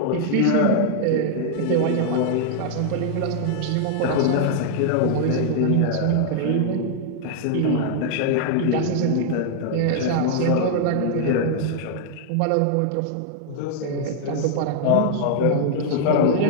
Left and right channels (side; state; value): both; different; correlation 0.00